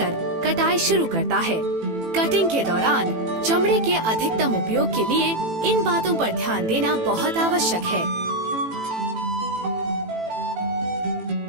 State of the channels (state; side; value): late; left; 18 ms